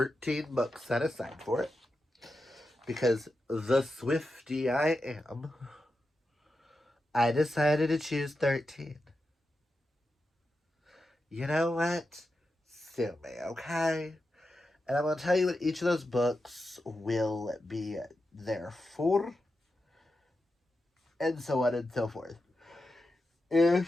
books set aside for it. Because the Swiftie I am, I decided to choose 13. You know what? Sue me, okay? And I'm going to tell you what each of those books will be there for. and so on and so forth.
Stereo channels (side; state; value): both; normal; correlation 0.89